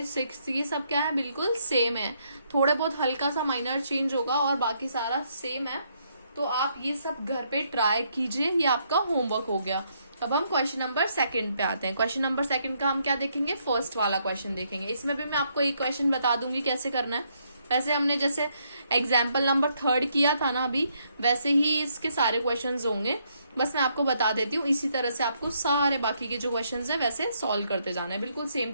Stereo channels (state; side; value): inverted; both; correlation -0.73